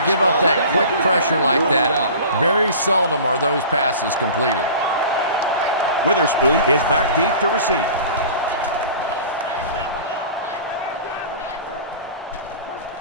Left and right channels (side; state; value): both; inverted; correlation -0.39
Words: give up that quick pressure like that, very seldom are those passes completed. Witherspoon is back deep to receive.